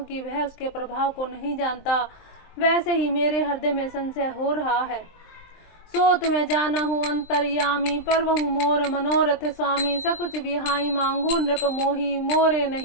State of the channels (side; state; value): right; late; 23 ms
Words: वह उसके प्रभाव को नहीं जानता, वैसे ही मेरे हृदय में संशय हो रहा है। सो तुम्हें जाना हूँ अंतर्यामी, परवहु मोर मनोरथ स्वामी, सकुच बिहाई मांगू नृप मोही, मोरे